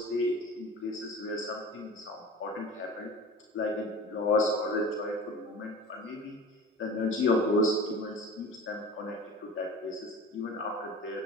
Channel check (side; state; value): both; normal; correlation 0.37